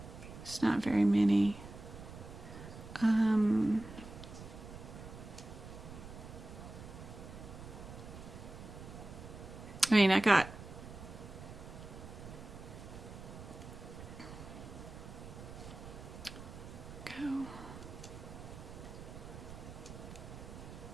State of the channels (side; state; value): right; noise; rumble, 13 dB below the sound